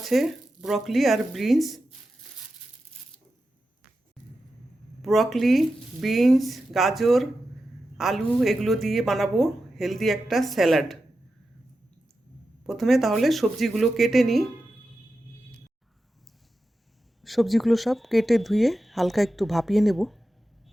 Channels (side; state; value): both; normal; correlation 0.91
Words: ব্রকলি আর বিনস। ব্রকলি, বিনস, গাজর, আলু এগুলো দিয়ে বানাবো হেলদি একটা স্যালাড। প্রথমে তাহলে সবজিগুলো কেটে নিই। সবজিগুলো সব কেটে ধুয়ে হালকা একটু ভাপিয়ে নেব।